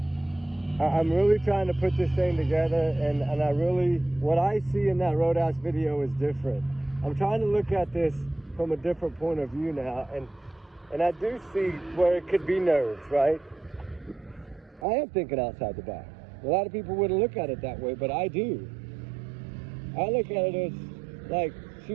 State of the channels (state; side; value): drops out; left; at 14.9 s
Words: I'm really trying to put this thing together, and I really, what I see in that Roadhouse video is different. I'm trying to look at this from a different point of view now, and I do see where it could be nerves, right? I am thinking outside the box. A lot of people wouldn't look at it that way, but I do. I look at it as like she